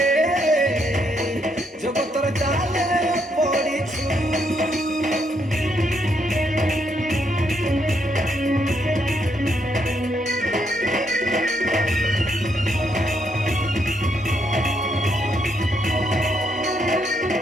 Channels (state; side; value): normal; both; correlation 0.75